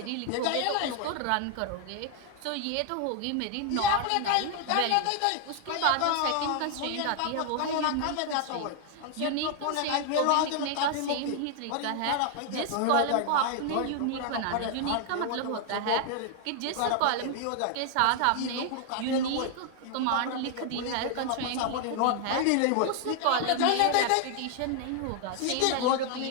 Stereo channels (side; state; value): both; different; correlation 0.00